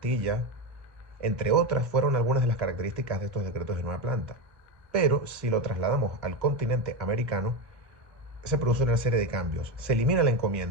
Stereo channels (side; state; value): both; normal; correlation 0.15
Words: entre otras fueron algunas de las características de estos decretos de nueva planta. Pero si lo trasladamos al continente americano, se produce una serie de cambios. Se elimina la